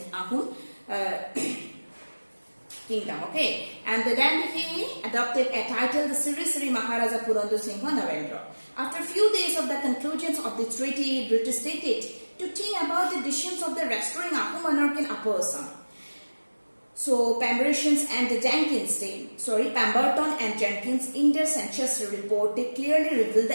kingdom. Okay, and then he adopted a title, the Siri Maharaja Purandar Singha Narendra. After a few days of the conclusions of the treaty, British stated to think about the decisions of the restoring Ahom monarchy in Upper Assam. So Pemberton and Jenkins in their census report, they clearly revealed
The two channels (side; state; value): both; inverted; correlation -1.00